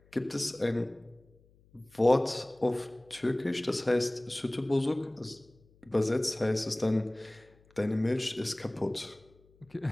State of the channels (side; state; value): left; noise; hum, 30 dB below the sound